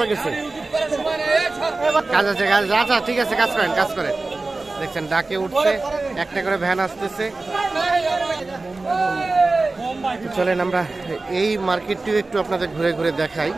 গেছে? কাজ আছে কাজ আচ্ছা ঠিক আছে কাজ করেন দেখছেন ডাকে উঠছে একটা করে ভ্যান আসতেছে। চলেন আমরা এই মার্কেটটিও একটু আপনাদের ঘুরে ঘুরে দেখাই।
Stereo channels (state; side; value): quieter; left; 3.4 dB